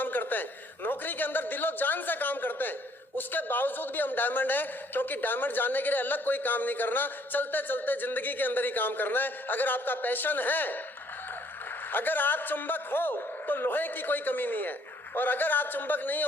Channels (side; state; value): both; normal; correlation 0.63